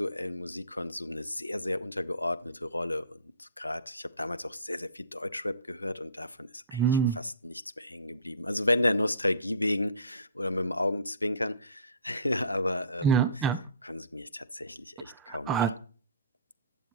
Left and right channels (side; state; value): both; inverted; correlation -0.48